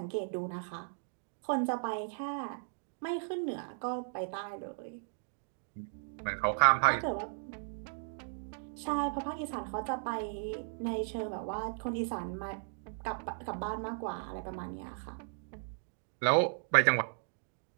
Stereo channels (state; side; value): silent; left; digital silence